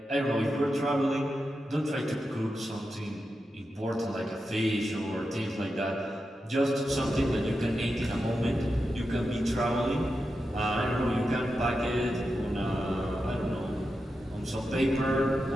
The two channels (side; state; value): both; normal; correlation 0.89